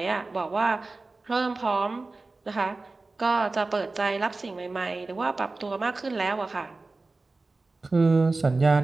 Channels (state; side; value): quieter; left; 3.4 dB